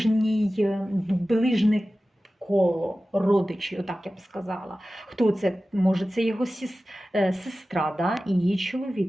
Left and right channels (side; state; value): both; normal; correlation 0.95